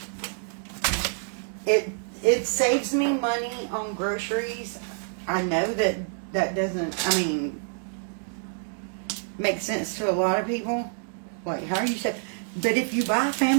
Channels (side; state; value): left; silent; 60 dB below the other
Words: It saves me money on groceries. I know that doesn't, I mean, make sense to a lot of people. Like, how you say, but if you buy